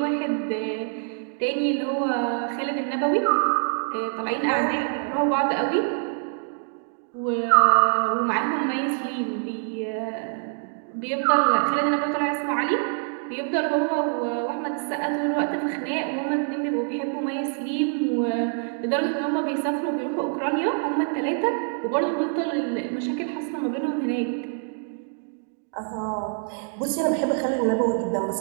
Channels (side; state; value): left; silent; 62 dB below the other